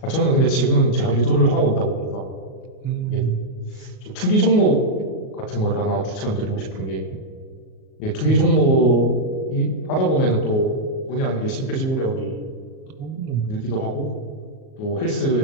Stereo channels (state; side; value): late; right; 38 ms